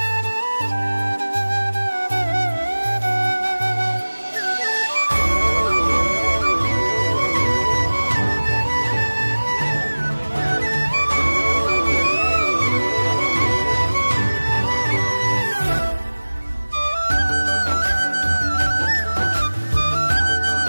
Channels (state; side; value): inverted; both; correlation -1.00